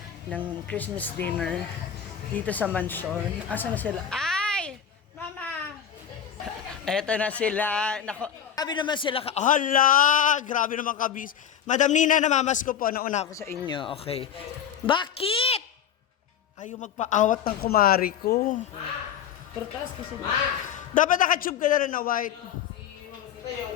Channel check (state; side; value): quieter; right; 8.7 dB